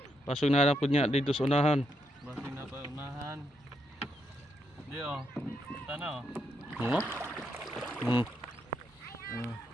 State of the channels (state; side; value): normal; both; correlation 0.80